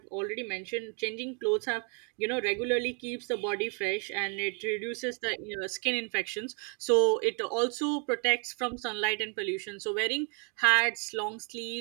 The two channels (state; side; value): quieter; left; 37.5 dB